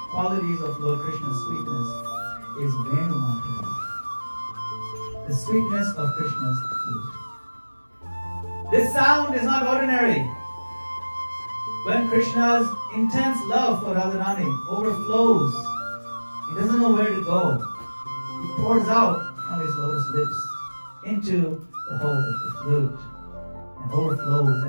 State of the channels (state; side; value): inverted; both; correlation -1.00